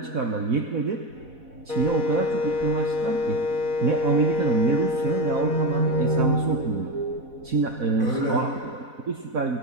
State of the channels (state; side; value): late; left; 4.1 ms